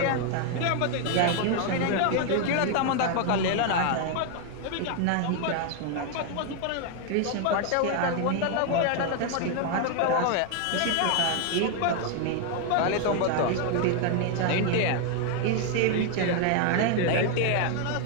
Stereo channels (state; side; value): different; both; correlation 0.01